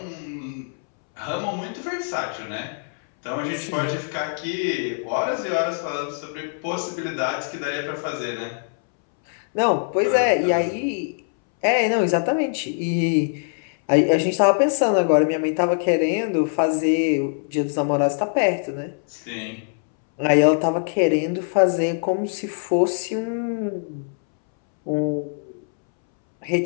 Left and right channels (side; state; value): right; silent; 63 dB below the other